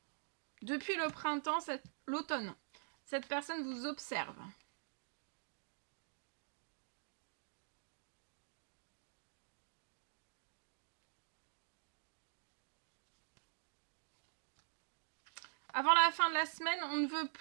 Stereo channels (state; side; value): silent; left; digital silence